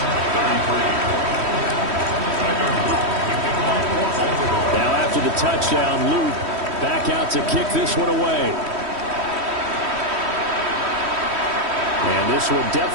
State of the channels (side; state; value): left; late; 3.1 ms